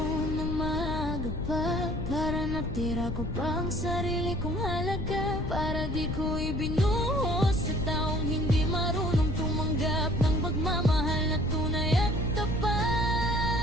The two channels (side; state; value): left; noise; rumble, 3 dB below the sound